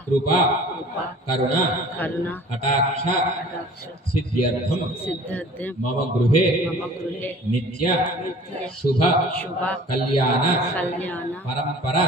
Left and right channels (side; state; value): both; normal; correlation 0.46